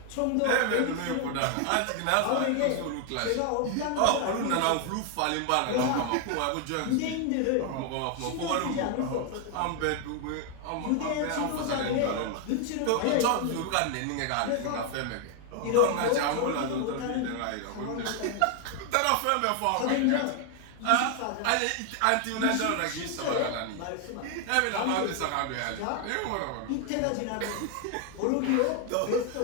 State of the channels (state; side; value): different; both; correlation 0.00